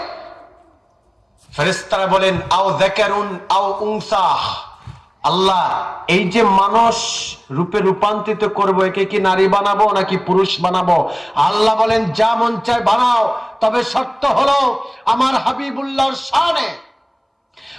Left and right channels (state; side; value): identical; both; correlation 1.00